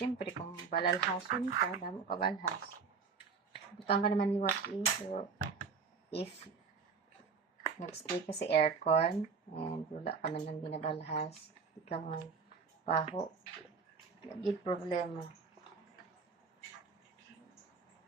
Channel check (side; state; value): left; quieter; 5.3 dB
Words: kung balalhason ka, damo ka balhas. Butang ka naman liwat so if nag-stay ka sa aircon and wala ka man lang binabalhas, di ka man paho. Naging problema.